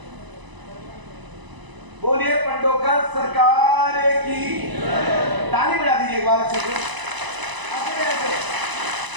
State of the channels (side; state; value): left; late; 1.0 ms